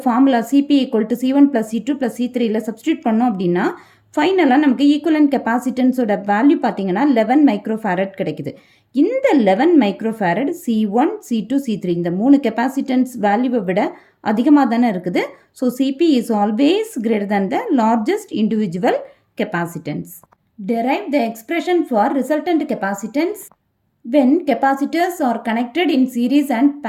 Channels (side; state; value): both; identical; correlation 1.00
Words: formula CP equal to C1 plus C2 plus C3யில் சப்ஸ்டியூட் பண்ணோம் அப்படின்னா ஃபைனலாக நமக்கு ஈக்குவலன்ட் கெப்பாசிட்டன்ஸோட வேல்யூ பார்த்தீங்கன்னா 11 மைக்ரோஃபாரட் கிடைக்குது. இந்த 11 மைக்ரோஃபாரட் C1, C2, C3 இந்த 3 கெப்பாசிட்டன்ஸ் வேல்யூவை விட அதிகமாக தானே இருக்குது. So CP is always greater than the largest individual capacitance. Derive the expression for resultant capacitance when capacitors are connected in series and